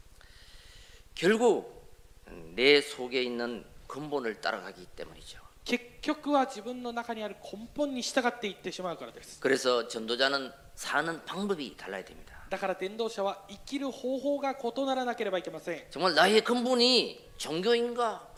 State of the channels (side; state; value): both; identical; correlation 1.00